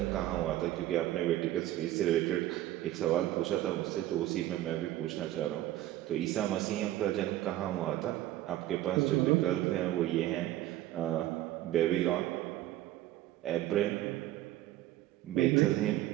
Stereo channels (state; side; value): quieter; left; 14.4 dB